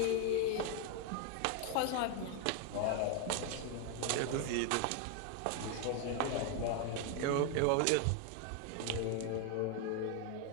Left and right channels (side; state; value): both; different; correlation 0.01